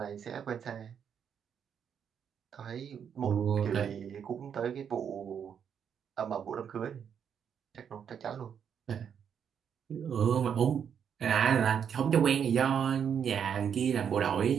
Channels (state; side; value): quieter; left; 7.9 dB